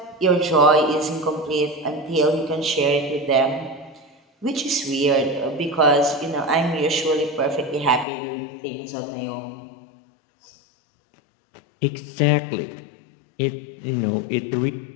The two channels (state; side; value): drops out; right; at 8.1 s